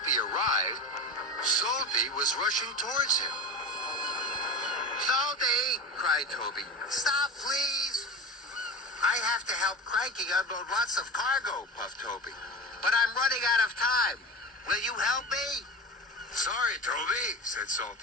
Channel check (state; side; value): normal; both; correlation 0.27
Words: arrived, Salty was rushing towards him. "Salty!" cried Toby. "Stop, please!" "I have to help Cranky unload lots of cargo," puffed Toby. "But I'm running out of time. Will you help me?" "Sorry, Toby," said